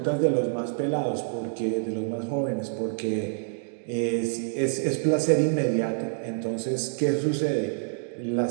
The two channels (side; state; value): left; silent; digital silence